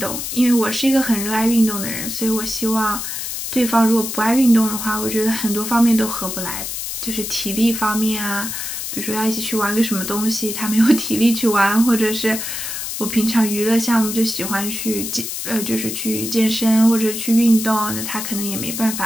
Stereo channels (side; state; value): left; noise; hiss, 5 dB below the sound